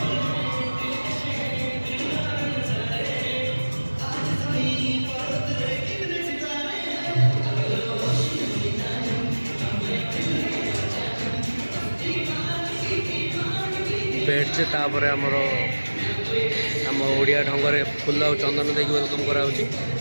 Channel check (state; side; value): inverted; both; correlation -1.00